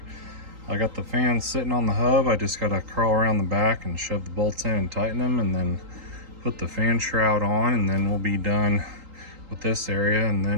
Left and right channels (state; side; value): late; left; 3.8 ms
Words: I got the fans sitting on the hub. I just gotta crawl around the back and shove the bolts in and tighten them and then put the fan shroud on, and then we'll be done with this area, and